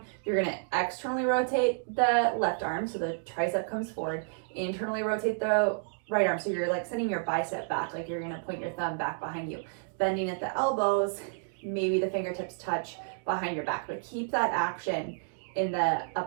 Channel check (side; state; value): left; silent; digital silence